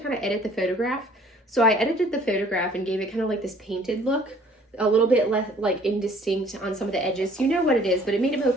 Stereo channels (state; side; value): normal; both; correlation 0.55